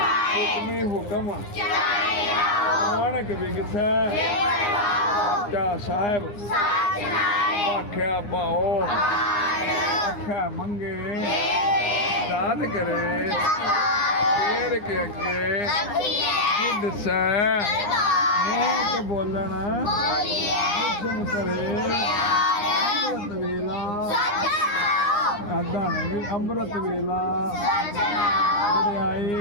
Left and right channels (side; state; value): right; late; 9.8 ms